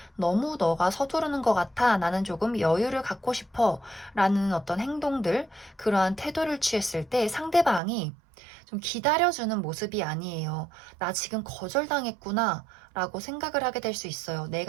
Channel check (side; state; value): left; drops out; at 7.8 s